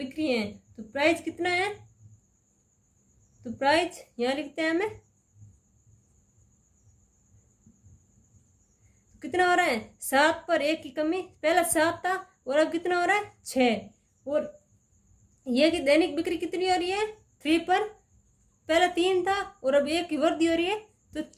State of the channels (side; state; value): both; identical; correlation 1.00